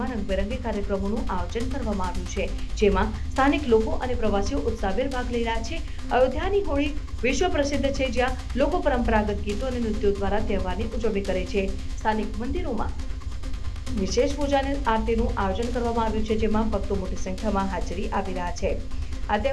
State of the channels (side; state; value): both; identical; correlation 1.00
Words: રંગબેરંગી કાર્યક્રમોનું આયોજન કરવામાં આવ્યું છે, જેમાં સ્થાનિક લોકો અને પ્રવાસીઓ ઉત્સાહભેર ભાગ લઈ રહ્યા છે. અયોધ્યાની હોળી વિશ્વ પ્રસિદ્ધ છે, જ્યાં લોકો પરંપરાગત ગીતો અને નૃત્યો દ્વારા તહેવારની ઉજવણી કરે છે. સ્થાનિક મંદિરોમાં વિશેષ પૂજા અને આરતીનું આયોજન કરવામાં આવ્યું છે, જેમાં ભક્તો મોટી સંખ્યામાં હાજરી આપી રહ્યા છે. આ